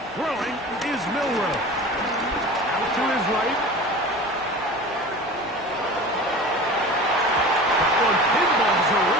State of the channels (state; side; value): noise; right; hum, 25 dB below the sound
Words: Throwing is Milroe. Out to his right. That one pinballs